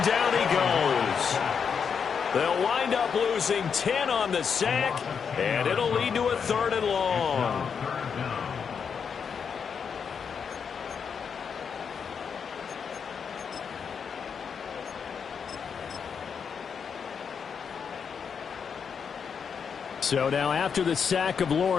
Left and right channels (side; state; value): right; quieter; 6.6 dB